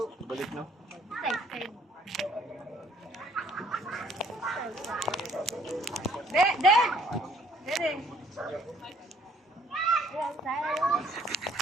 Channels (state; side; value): normal; both; correlation 0.61